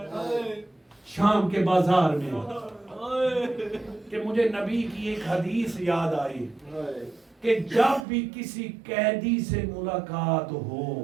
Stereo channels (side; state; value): left; drops out; at 8.1 s